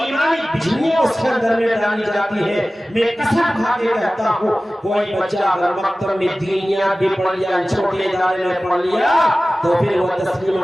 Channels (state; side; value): normal; both; correlation 0.97